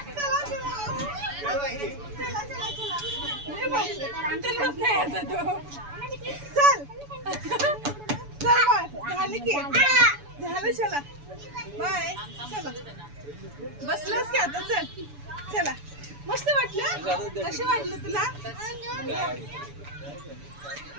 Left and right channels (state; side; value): late; left; 7.0 ms